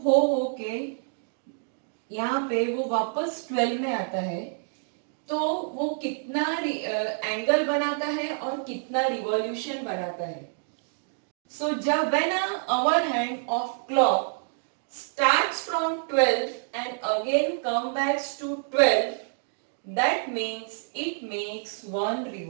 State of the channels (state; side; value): silent; left; digital silence